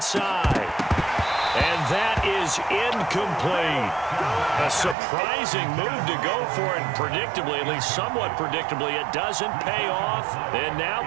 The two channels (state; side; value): drops out; left; at 5.0 s